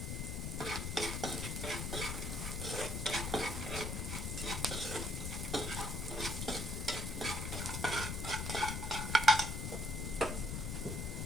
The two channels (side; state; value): left; noise; rumble, 3 dB below the sound